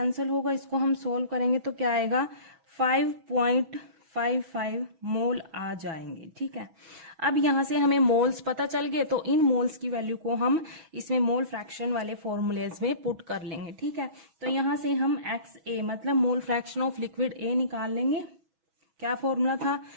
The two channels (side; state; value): left; late; 6.1 ms